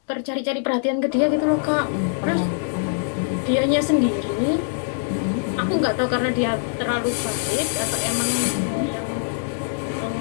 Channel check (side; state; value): right; silent; digital silence